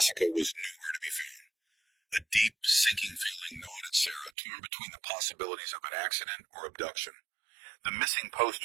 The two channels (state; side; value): drops out; left; at 4.3 s